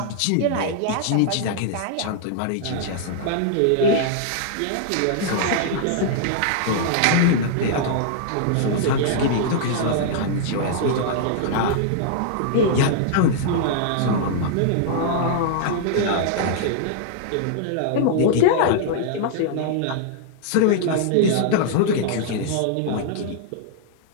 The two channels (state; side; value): different; both; correlation -0.01